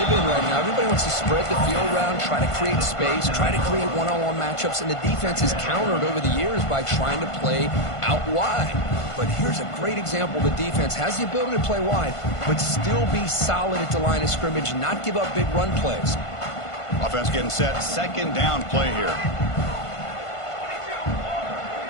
in right now, everybody wants to spread the field around, try to create space, try to create one-on-one matchups, and the defense is countered over the years by trying to play out wide. But here's a great example. The defense has the ability to play wide, but still be solid at the line of scrimmage and not give up big run plays. Offense getting set. 2nd down play here.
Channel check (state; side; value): late; right; 1.5 ms